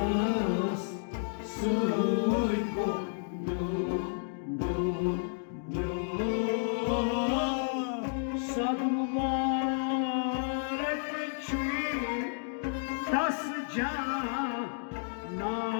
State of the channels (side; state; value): right; silent; digital silence